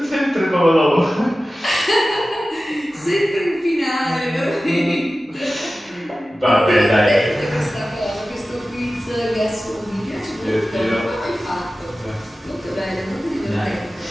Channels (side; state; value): both; normal; correlation 0.95